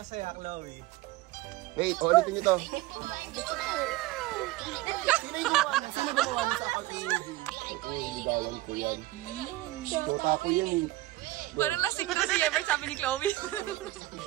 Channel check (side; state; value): left; quieter; 17.6 dB